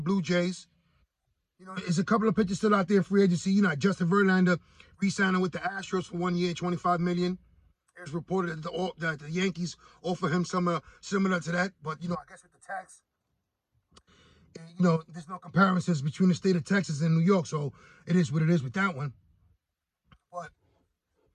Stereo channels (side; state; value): both; identical; correlation 1.00